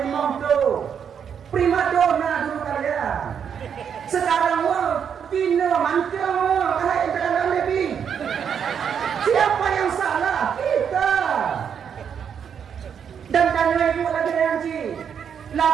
5 tu prima donna dulu kalian sekarang Tino mancung, hai dalam lebih. Siapa yang salah? Kita. Dan tanya ibu lagi nanti.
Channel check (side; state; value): left; quieter; 7.7 dB